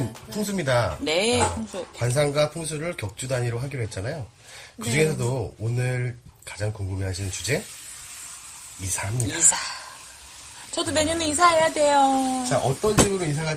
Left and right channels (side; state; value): both; identical; correlation 1.00